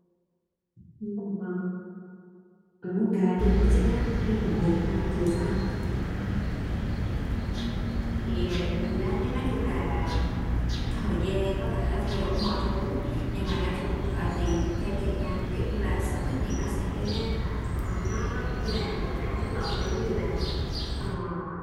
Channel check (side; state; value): both; identical; correlation 1.00